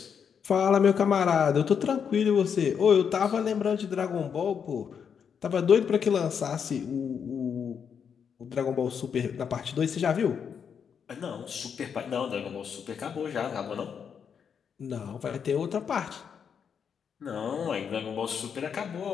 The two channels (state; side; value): quieter; right; 7.2 dB